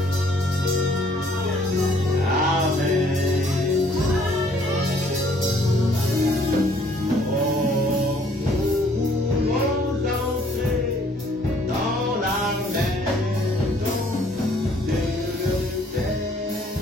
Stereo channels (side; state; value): both; normal; correlation 0.61